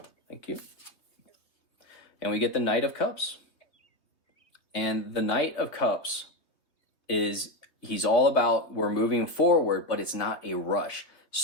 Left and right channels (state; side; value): late; right; 3.1 ms